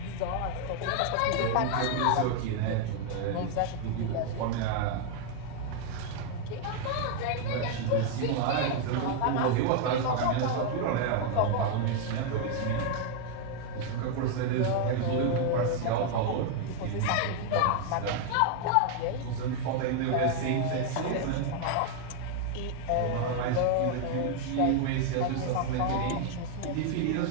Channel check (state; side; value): different; both; correlation 0.00